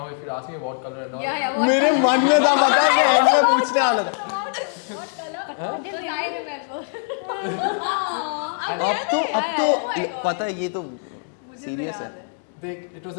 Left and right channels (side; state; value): right; silent; 64 dB below the other